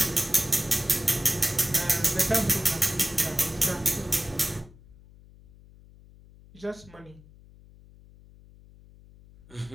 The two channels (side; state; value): left; noise; hum, 23 dB below the sound